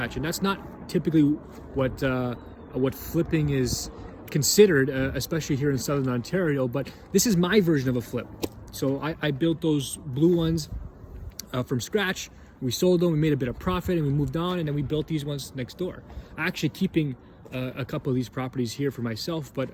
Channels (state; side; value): identical; both; correlation 1.00